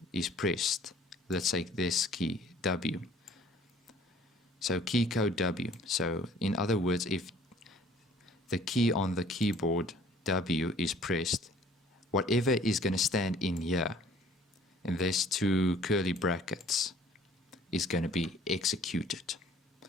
is pressed, let's say this key W, so key code W. So in other words, if the key on the keyboard W is pressed, whatever is going to stand in here, and there's two curly brackets, is going to be executed.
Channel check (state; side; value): normal; both; correlation 0.54